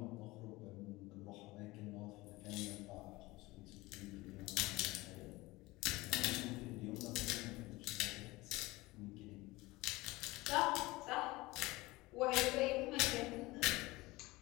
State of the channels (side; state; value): right; quieter; 20.8 dB